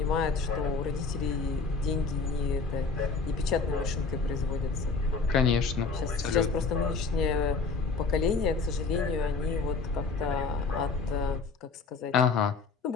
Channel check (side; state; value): right; quieter; 4.4 dB